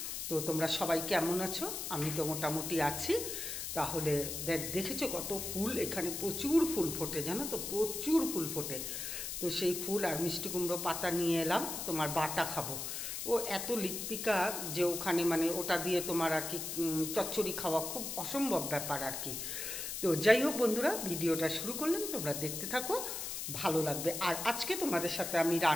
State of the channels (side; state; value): left; noise; hiss, 5 dB below the sound